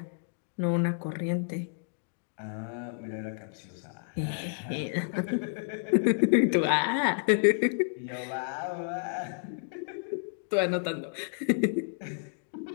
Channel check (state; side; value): silent; right; digital silence